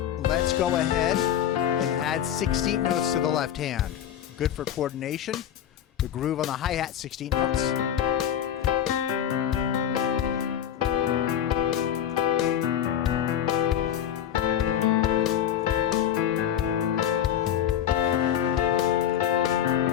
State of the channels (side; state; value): right; quieter; 10.2 dB